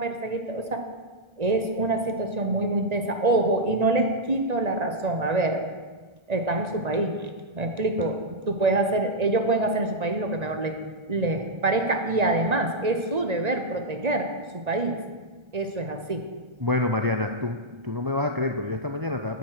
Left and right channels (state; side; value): late; left; 1.9 ms